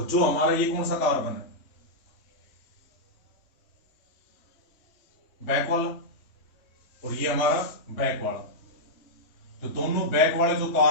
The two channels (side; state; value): right; late; 3.1 ms